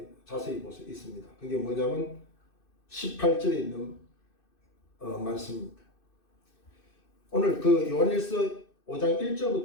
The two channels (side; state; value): right; late; 2.6 ms